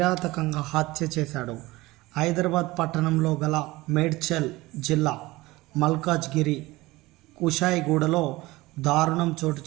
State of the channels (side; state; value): left; quieter; 20.0 dB